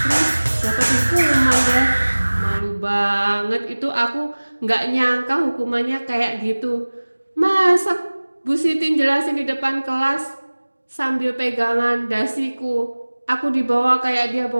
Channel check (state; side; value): inverted; both; correlation -1.00